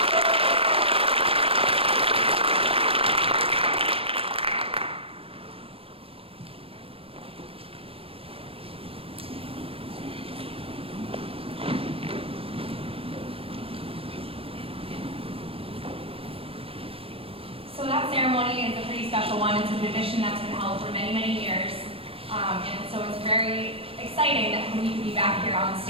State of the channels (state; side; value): late; left; 0.27 ms